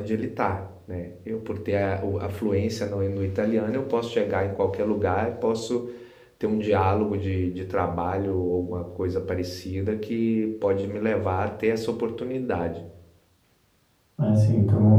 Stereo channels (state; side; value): identical; both; correlation 1.00